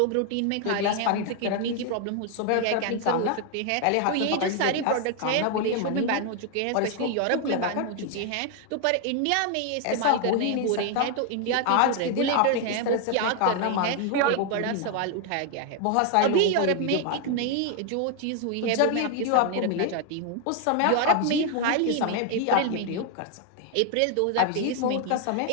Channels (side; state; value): both; different; correlation 0.00